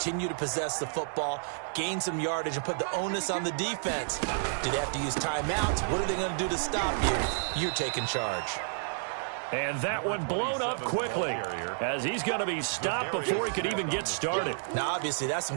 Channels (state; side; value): silent; left; digital silence